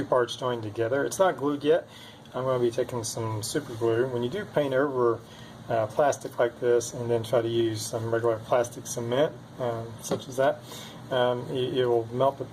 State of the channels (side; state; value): both; identical; correlation 1.00